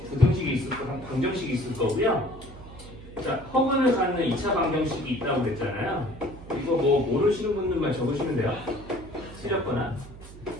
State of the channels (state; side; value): noise; right; hum, 16 dB below the sound